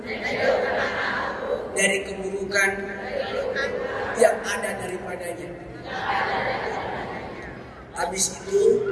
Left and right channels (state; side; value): identical; both; correlation 1.00